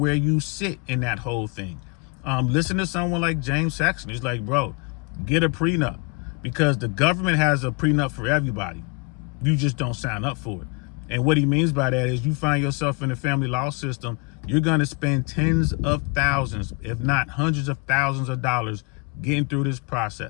you sit in that whole thing. Listen to someone like James Saxon. He's like, bro, get a prenup, because the government has a prenup for everybody. You just don't sign up for it. And what he means by that is you find yourself in the family law system, you're going to spend tens of thousands, if not hundreds of thousands of dollars getting through this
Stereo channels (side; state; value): right; quieter; 31.2 dB